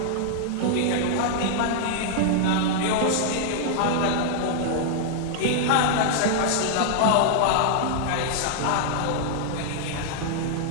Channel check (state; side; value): different; both; correlation -0.01